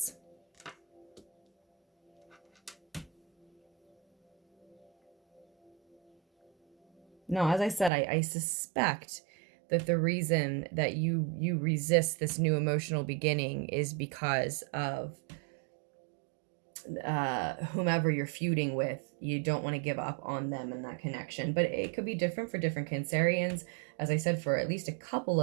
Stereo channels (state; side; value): drops out; left; at 7.9 s